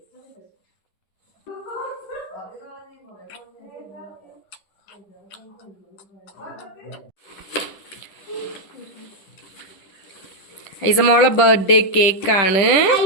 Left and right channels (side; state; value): right; late; 10 ms